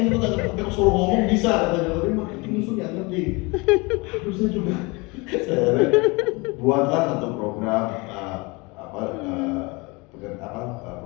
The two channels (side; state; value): right; quieter; 26.6 dB